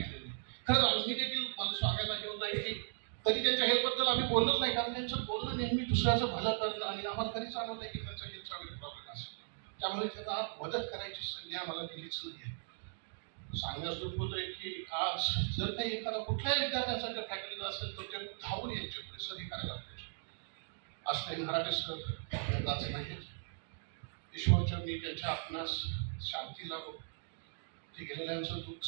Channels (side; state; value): left; silent; digital silence